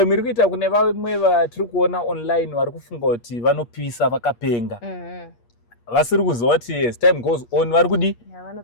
iri kuita kune vamwe vatiri kuona online vari kufunga kuti vanopisa vakapenga. Vasiri kuziva kuti as time goes on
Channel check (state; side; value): late; right; 8.5 ms